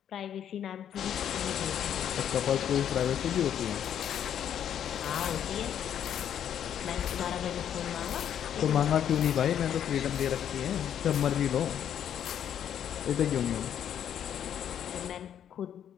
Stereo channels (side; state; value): right; quieter; 9.6 dB